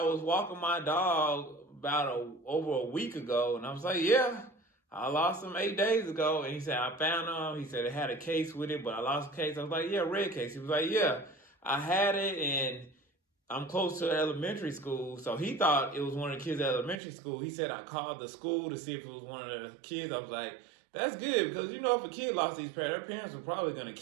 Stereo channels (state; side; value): drops out; left; at 17.0 s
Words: was walking my dog over a week ago. And I was like, yeah, I lost him 8 days ago. And he said, I found them. He said, it had a case with it, but I lost the case. I was like, yeah, red case. He was like, yeah, I had it, and I'm close to elementary school, so he thought it was one of the kids at elementary school. He said I called the school to see if it was one of the kids. I was like, that's good, because if a kid lost these parents, their parents were probably going to